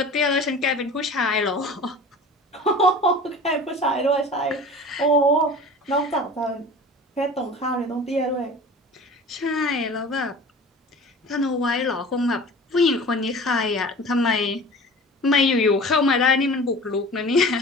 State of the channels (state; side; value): normal; both; correlation 0.40